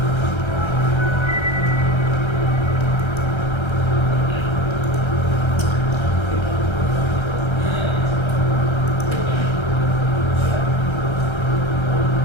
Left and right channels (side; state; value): right; late; 1.3 ms